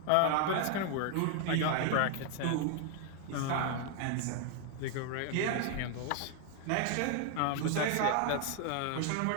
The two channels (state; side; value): different; both; correlation 0.00